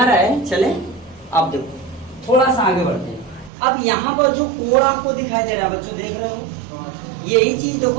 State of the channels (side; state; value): left; drops out; at 3.5 s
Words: रहा है? चले अब देखो थोड़ा सा आगे बढ़ते हैं। अब यहाँ पर जो कोड आपको दिखाई दे रहा है बच्चों, देख रहे हो? यही चीज